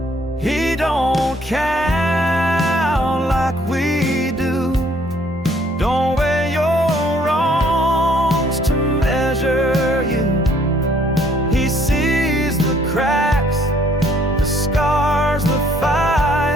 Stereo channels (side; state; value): both; normal; correlation 0.63